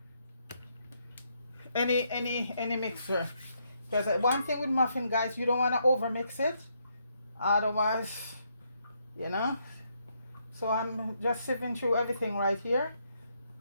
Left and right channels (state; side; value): inverted; both; correlation -0.76